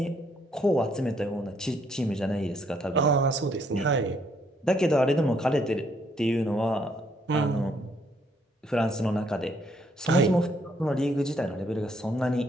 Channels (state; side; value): normal; both; correlation 0.69